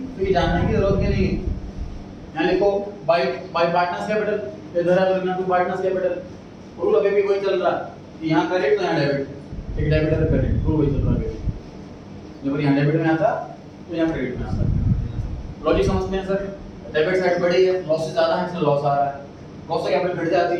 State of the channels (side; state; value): both; identical; correlation 1.00